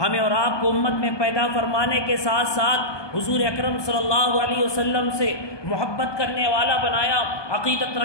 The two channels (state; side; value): late; right; 1.2 ms